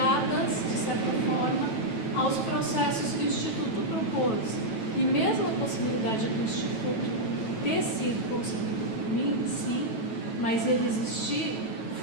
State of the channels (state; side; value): late; right; 9.1 ms